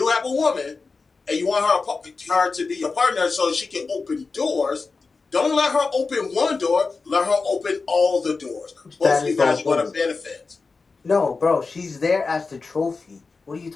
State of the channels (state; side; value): quieter; right; 4.3 dB